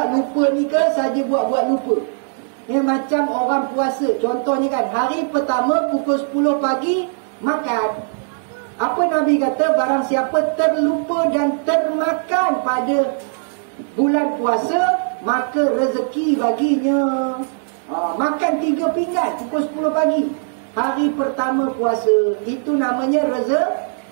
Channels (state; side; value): silent; left; digital silence